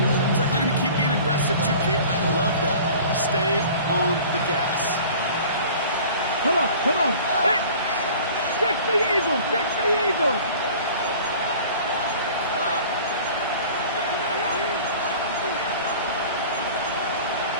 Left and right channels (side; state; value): both; inverted; correlation -0.44